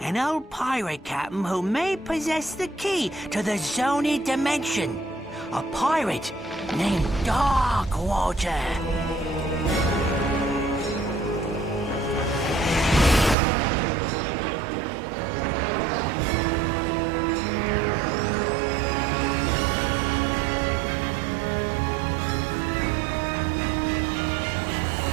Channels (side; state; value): left; drops out; at 13.4 s